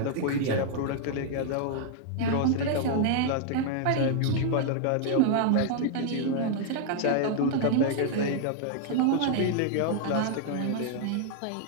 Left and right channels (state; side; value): different; both; correlation 0.00